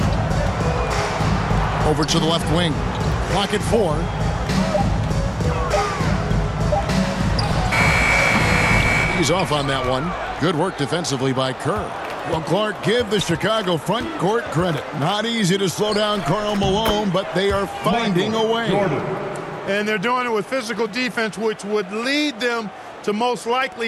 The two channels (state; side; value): identical; both; correlation 1.00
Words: Over to the left wing. Clock at 4. He's off on that one. Good work defensively by Kerr. Well, Clark, give the Chicago front court credit. Not easy to slow down Karl Malone, but they are finding a way. And they're doing it with physical defense, which would lead them to most